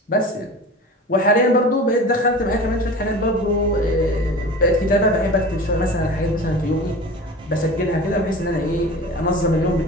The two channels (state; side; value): normal; both; correlation 0.36